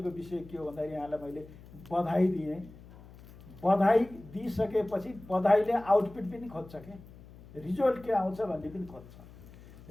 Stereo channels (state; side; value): noise; left; hum, 20 dB below the sound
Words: विषय के हो भन्दाखेरि यहाँलाई मैले बधाई दिएँ। बधाई दिइसकेपछि बधाईले आउटपुट पनि खोज्छ के, रिजल्ट के आउँछ भन्ने पनि खोज्छ।